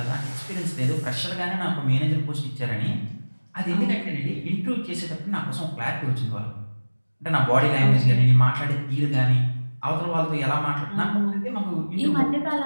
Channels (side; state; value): both; inverted; correlation -1.00